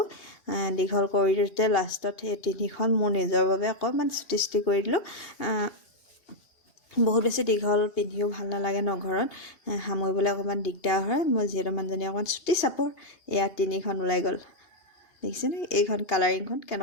দীঘল কৰি দিওঁতে লাষ্টত সেই 3খন মোৰ নিজৰ বাবে অকণমান চুটি কৰি দিলোঁ বহুত বেছি দীঘল পিন্ধিও ভাল নালাগে ন ঘৰত সামৰিবলৈ অকণমান দিগদাৰ হয় মই যিহেতু মানুহজনী অকণমান চুটি চাপৰ 3খন ওলাই গ'ল দেখিছেনে এইখন কালাৰিংখন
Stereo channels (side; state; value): right; late; 2.8 ms